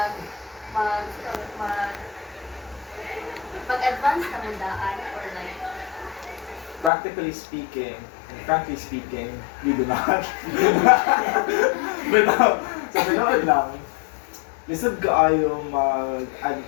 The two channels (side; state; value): right; drops out; at 6.9 s